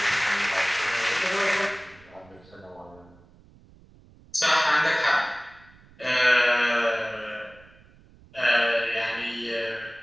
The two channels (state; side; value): noise; right; rumble, 26 dB below the sound